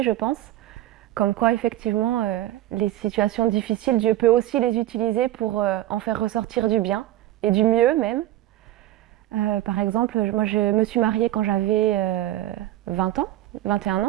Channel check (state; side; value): quieter; left; 14.4 dB